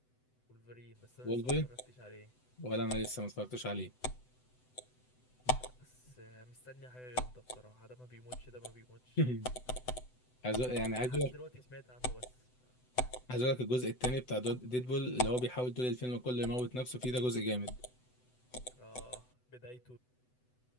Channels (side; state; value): right; late; 8.0 ms